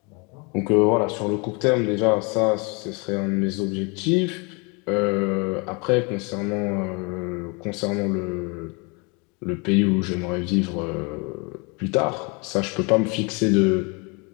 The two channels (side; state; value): right; quieter; 31.0 dB